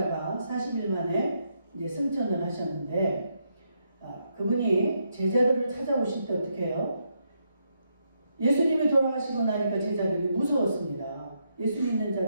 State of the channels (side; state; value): both; inverted; correlation -0.79